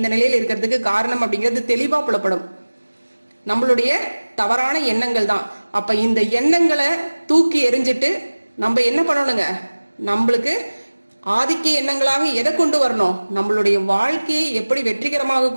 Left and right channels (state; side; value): inverted; both; correlation -1.00